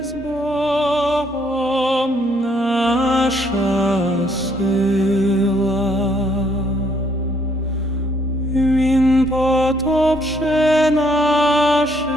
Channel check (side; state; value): both; normal; correlation 0.68